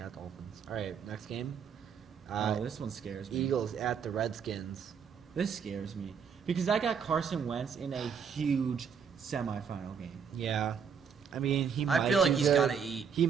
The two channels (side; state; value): left; quieter; 6.7 dB